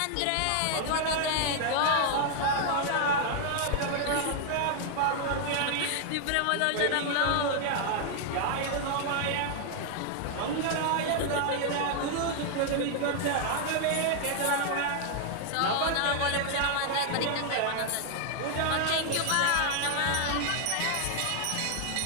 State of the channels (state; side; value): different; both; correlation 0.00